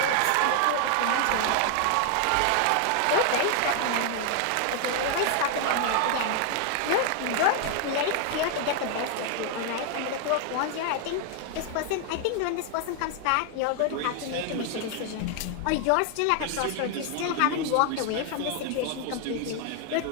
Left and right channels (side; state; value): both; different; correlation 0.00